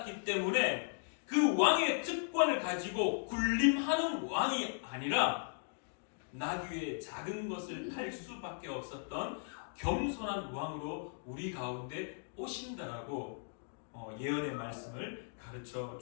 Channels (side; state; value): right; silent; digital silence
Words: 때문에 그 왕의 특권을 가지고 군림하는 왕이 아니라 나귀의 작은 것을 탈 수밖에 없었던 겸손한 왕으로 우리 가운데 오신다라고 예언의 말씀을 가르쳐